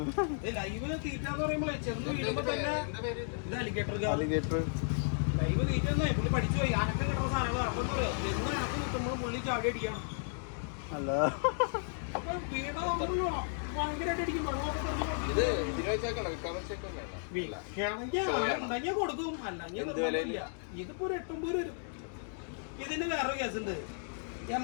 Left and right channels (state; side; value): silent; right; digital silence